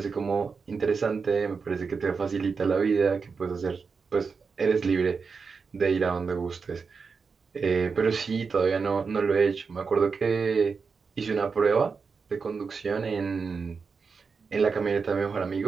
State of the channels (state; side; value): quieter; left; 5.2 dB